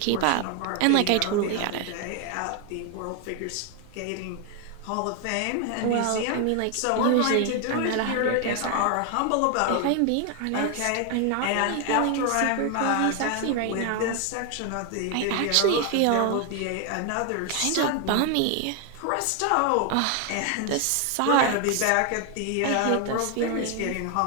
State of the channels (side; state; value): both; different; correlation 0.01